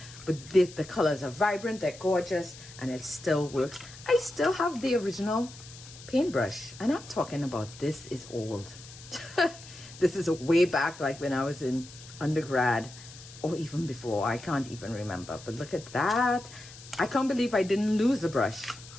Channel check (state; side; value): noise; left; hiss, 18 dB below the sound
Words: But the colors are vibrant, they're gorgeous, and it still works. I still have the original paintbrush. And I'm talking about this is old. This is way back, like when I was in undergrad. Or even before, I can't even remember. But look at that. I can't believe I didn't lose the brush.